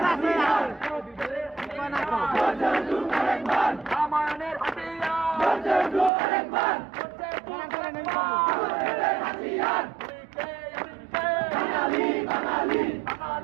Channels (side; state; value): left; drops out; at 6.1 s